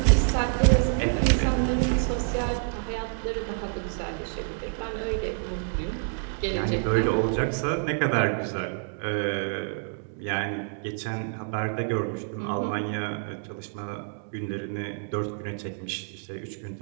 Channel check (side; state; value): left; silent; 60 dB below the other